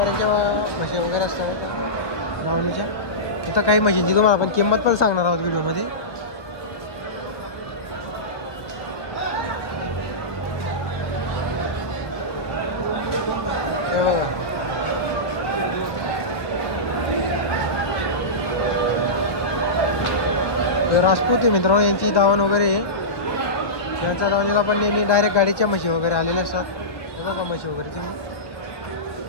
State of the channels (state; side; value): late; right; 1.3 ms